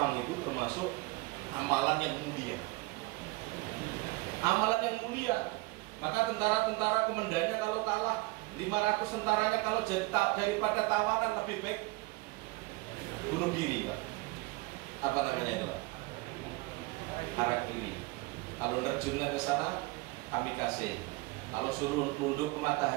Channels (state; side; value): quieter; left; 22.6 dB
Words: itu termasuk amalan yang mulia. Amalan yang mulia. Maka tentara-tentara komandannya kalau kalah, 500 tentaranya kalau jadi daripada tawanan lebih baik bunuh diri, Pak. Apa namanya itu, Pak? Harakiri. Kalau nerjunnya ke sana, kamikaze. Kalau suruh nunduk ke